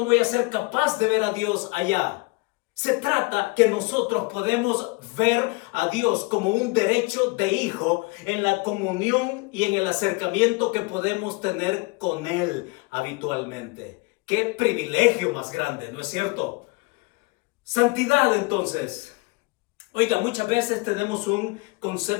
voy a ser capaz de ver a Dios allá. Se trata que nosotros podemos ver a Dios como un derecho de hijo en la comunión y en el acercamiento que podemos tener con Él habitualmente. ¡Qué privilegio más grande!, ¿no es cierto? Santidad, entonces. Oiga, muchas veces tenemos un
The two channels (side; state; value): right; quieter; 27.0 dB